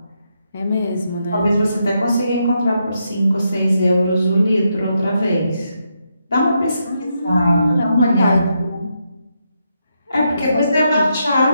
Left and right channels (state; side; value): inverted; both; correlation -0.81